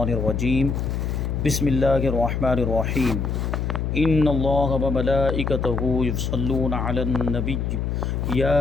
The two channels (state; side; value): noise; left; hum, 1 dB below the sound